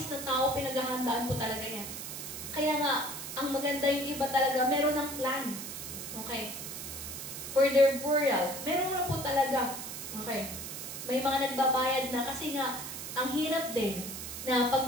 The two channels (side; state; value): right; noise; hiss, 8 dB below the sound